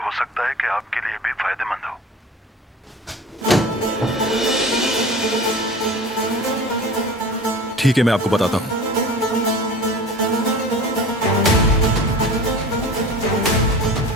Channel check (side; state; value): both; normal; correlation 0.38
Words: हो सकता है कि आपके लिए भी फायदेमंद हो। ठीक है, मैं आपको बताता हूँ।